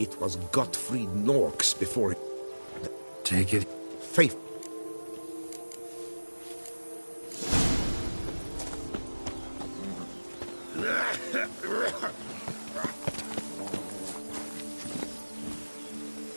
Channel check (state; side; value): inverted; both; correlation -1.00